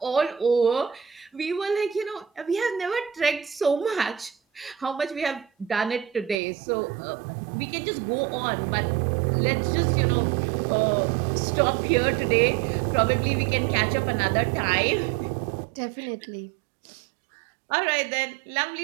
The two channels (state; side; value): drops out; left; at 6.4 s